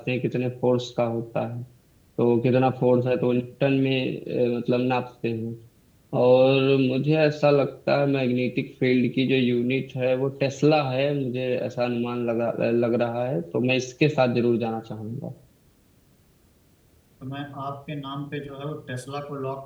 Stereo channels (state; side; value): identical; both; correlation 1.00